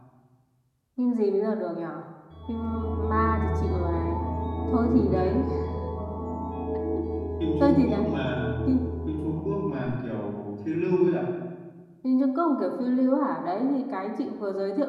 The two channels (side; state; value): both; identical; correlation 1.00